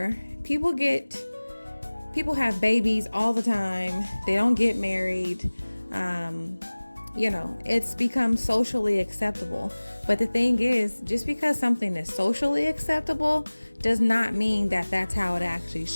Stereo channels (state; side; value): inverted; both; correlation -1.00